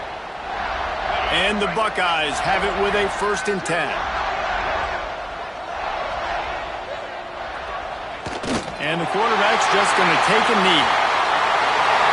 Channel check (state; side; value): identical; both; correlation 1.00